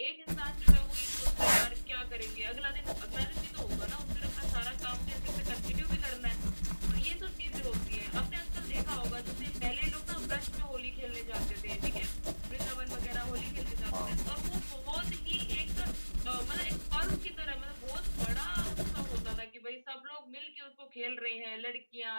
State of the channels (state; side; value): inverted; both; correlation -1.00